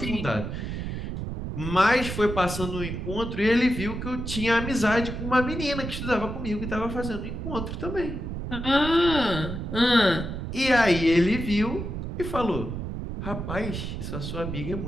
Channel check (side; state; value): right; noise; rumble, 6 dB below the sound